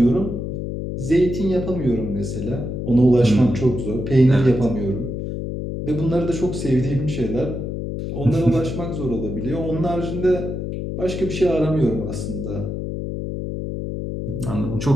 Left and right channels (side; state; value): left; noise; hum, 4 dB below the sound